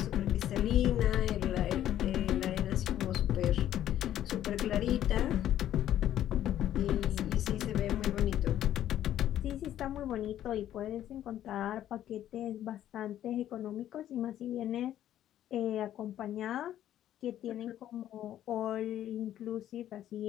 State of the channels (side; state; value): right; quieter; 11.8 dB